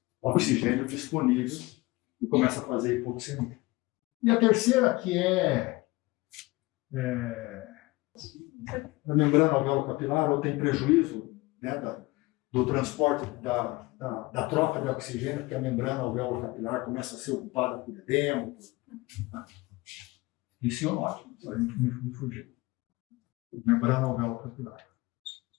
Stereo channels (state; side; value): quieter; right; 21.8 dB